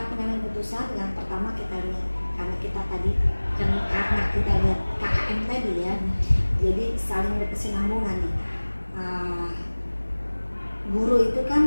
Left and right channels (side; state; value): both; inverted; correlation -1.00